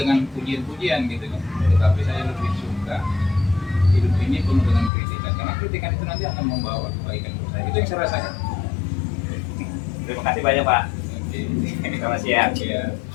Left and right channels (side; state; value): right; drops out; at 4.9 s